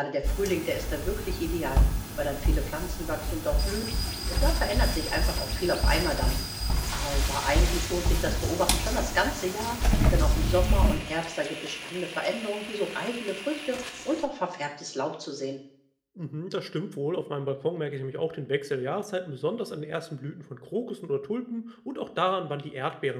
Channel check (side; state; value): both; identical; correlation 1.00